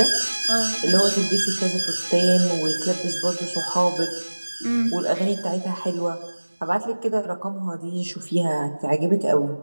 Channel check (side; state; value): both; inverted; correlation -1.00